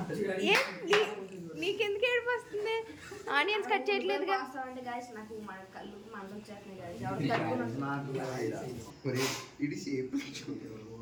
నీకెందుకు ఏడుపు వస్తుంది? Onions cut చేయట్లేదుగా.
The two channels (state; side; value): identical; both; correlation 1.00